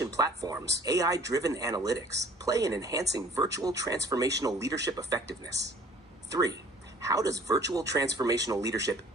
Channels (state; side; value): normal; both; correlation 0.52